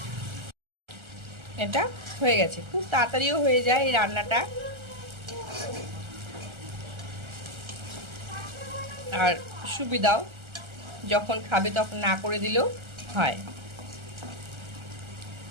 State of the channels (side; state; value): left; late; 1.3 ms